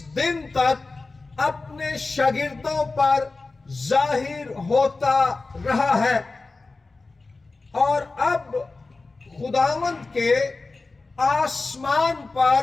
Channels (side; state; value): right; quieter; 3.6 dB